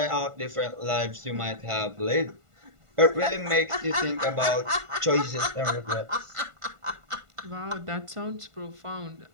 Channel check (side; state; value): left; late; 1.5 ms